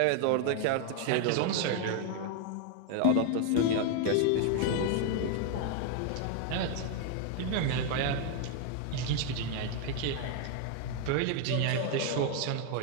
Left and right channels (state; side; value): different; both; correlation 0.00